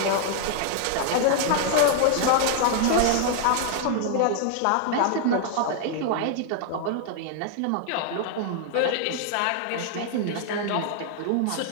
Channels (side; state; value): both; different; correlation 0.00